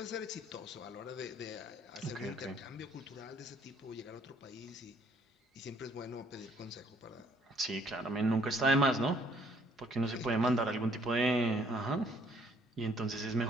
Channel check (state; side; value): normal; both; correlation 0.63